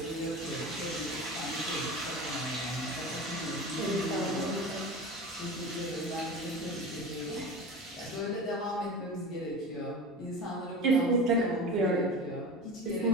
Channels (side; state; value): both; normal; correlation 0.31